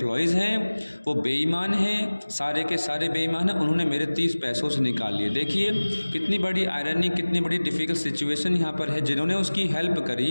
हैं वो बेईमान हैं, सारे के सारे बेईमान हैं। उन्होंने मेरे 30 पैसों से निकाल लिए। देखिए कितनी बड़ी आयरनी, कितनी बड़ी डिफ़िकल्ट सिचुएशन यहाँ पर है। जिन्होंने उसकी हेल्प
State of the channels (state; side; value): inverted; both; correlation -1.00